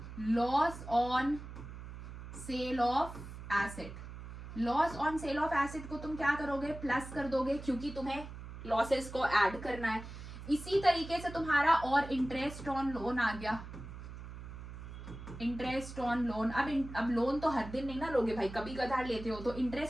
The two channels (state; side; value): noise; right; hum, 11 dB below the sound